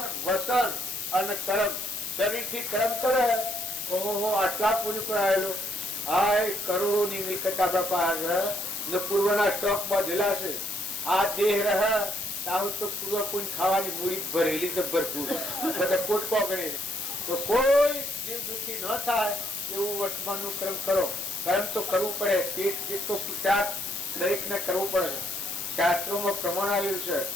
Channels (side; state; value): left; noise; hiss, 6 dB below the sound